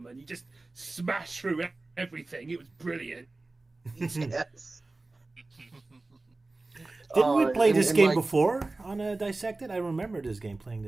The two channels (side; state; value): left; quieter; 3.2 dB